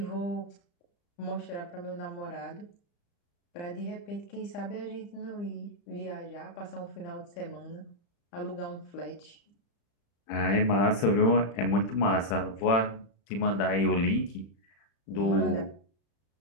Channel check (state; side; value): late; right; 35 ms